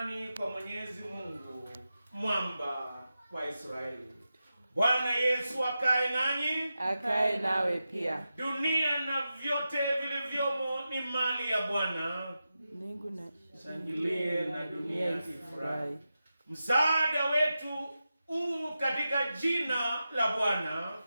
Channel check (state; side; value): inverted; both; correlation -0.91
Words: kwa Mwenyezi Mungu, mwamba wa Israeli. Bwana Yesu akae nanyi, akae nawe pia. Dunia na vyote vilivyomo ni mali ya Bwana. Mbingu na shangilie na dunia ifurahi. Msaada wetu katika jina la Bwana.